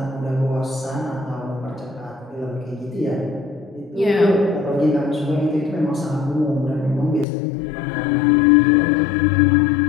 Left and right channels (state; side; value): drops out; right; at 7.2 s